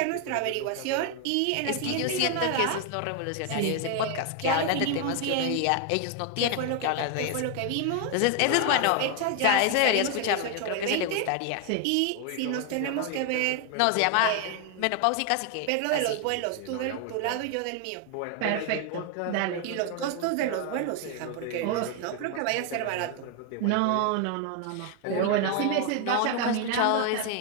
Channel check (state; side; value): different; both; correlation 0.01